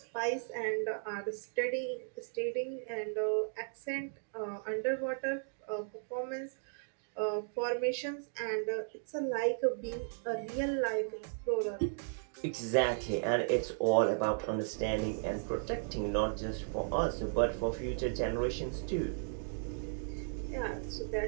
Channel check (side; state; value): left; silent; digital silence